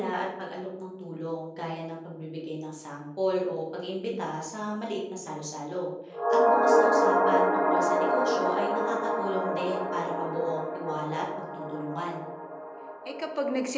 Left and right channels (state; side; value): identical; both; correlation 1.00